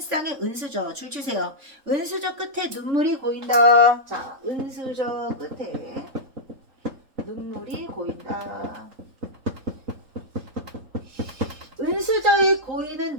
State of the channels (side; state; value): left; late; 3.8 ms